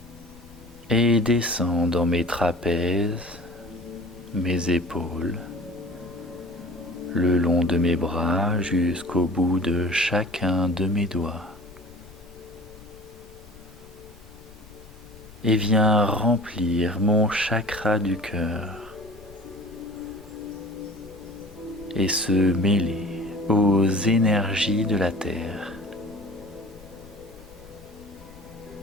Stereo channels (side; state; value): left; noise; rumble, 22 dB below the sound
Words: et descend dans mes trapèzes, mes épaules, le long de mes bras jusqu'au bout de chacun de mes doigts. Et vient remplir mon chakra du cœur et se mêler aux énergies de la terre.